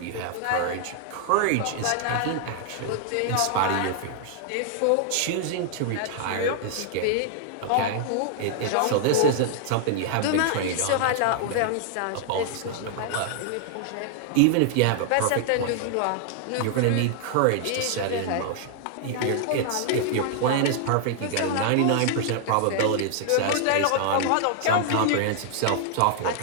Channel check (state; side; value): different; both; correlation 0.00